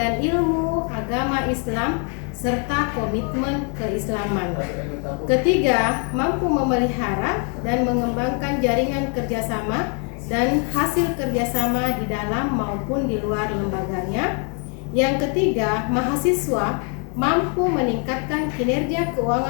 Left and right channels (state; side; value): quieter; right; 39.3 dB